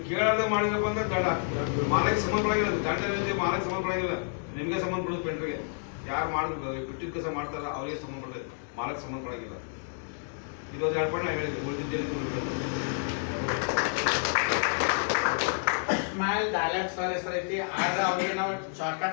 ಕೇಳಾರ್ದ ಮಾಡಿದ್ರಪ್ಪ ಅಂದ್ರೆ ದಂಡ ಹಾಕ್ತೀವಿ. ಮಾಲಕ್ಕೆ ಸಂಬಂಧಪಡಂಗಿಲ್ಲ, ದಂಡ ಏನಿದೆ ಮಾಲಕ್ಕೆ ಸಂಬಂಧಪಡಂಗಿಲ್ಲ, ನಿಮಗೆ ಸಂಬಂಧಪಡೋದು ಪೆಂಟ್ರಿಗೆ. ಯಾರು ಬಿಟ್ಟಿದ್ದ ಕೆಲಸ ಮಾಡ್ತಾರ ಅವರಿಗೆ ಸಂಬಂಧಪಡೋದು, ಮಾಲಕ್ಕೆ ಸಂಬಂಧಪಡಂಗಿಲ್ಲ. ಇದೊಂದು 2 ಪಾಯಿಂಟ್ ನಾನು ಹೇಳಿದೆ, ಉಳಿದಿದ್ದೇನೆ. ಸ್ಮೈಲ್ ಡೈಲಾಗ್ ಸರ್ ಹೆಸರು ಐತಿ, ಆದ್ರೆ ಅವ್ರಿಗೆ ನಾವು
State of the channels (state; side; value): silent; right; 58 dB below the other